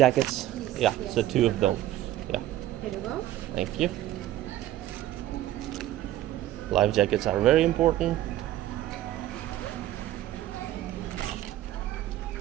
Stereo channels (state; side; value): quieter; left; 13.9 dB